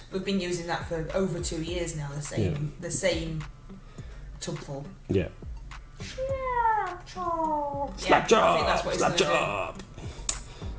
We've been using that for over 2 years now. The same tubful. Yeah. Slap job. I think that's what it's Slap gonna do. job.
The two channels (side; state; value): both; identical; correlation 1.00